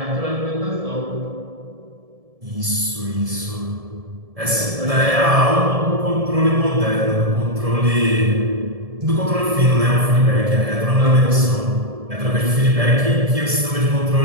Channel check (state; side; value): late; left; 1.7 ms